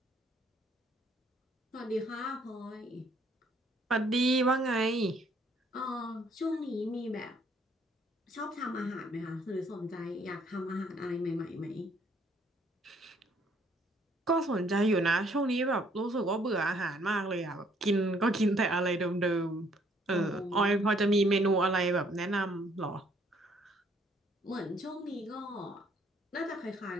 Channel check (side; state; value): both; normal; correlation 0.64